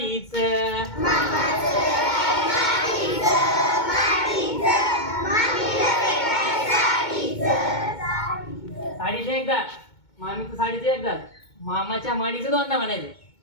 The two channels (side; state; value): right; late; 2.2 ms